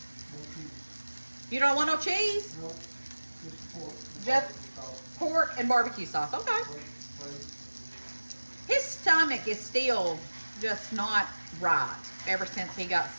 No cheese. You don't want no cheese? No, just pork. Just pork and barbecue sauce. Okay. His stomach is still just not right ever since he got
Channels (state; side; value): inverted; both; correlation -1.00